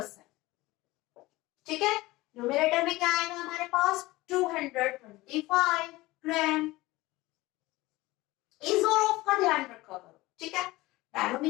ठीक है। न्यूमरेटर में क्या आएगा हमारे पास, 225 ग्राम, इस और ऑफ का ध्यान रखा करो, ठीक है।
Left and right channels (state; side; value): quieter; right; 19.7 dB